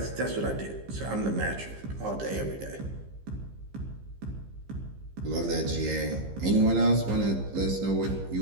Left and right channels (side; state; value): left; late; 15 ms